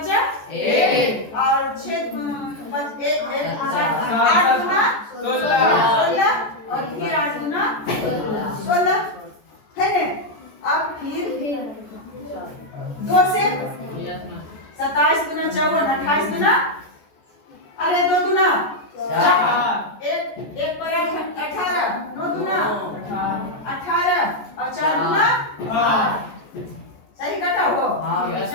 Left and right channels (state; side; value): late; right; 14 ms